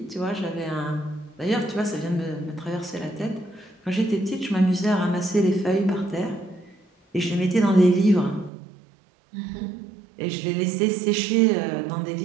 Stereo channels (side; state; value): left; drops out; at 8.5 s